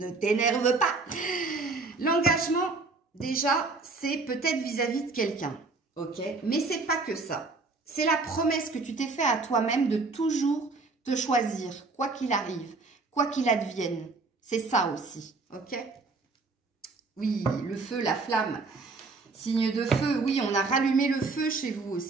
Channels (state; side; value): quieter; left; 3.9 dB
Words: t'énerve pas. L'engagement, déjà, c'est peut-être vis-à-vis de quelqu'un. Ok, mais c'est pas que ça. C'est la promesse que tu t'es fait à toi-même de toujours te choisir, quoi qu'il arrive, quoi qu'il advienne. C'est ça aussi, ok? Oui, le feu, la flamme, signe de feu. Oui, on a rallumé le feu chez vous